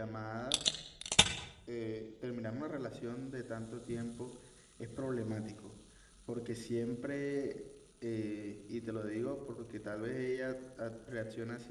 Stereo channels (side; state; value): both; identical; correlation 1.00